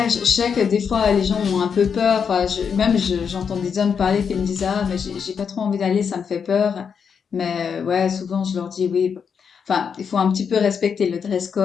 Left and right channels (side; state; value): right; quieter; 6.7 dB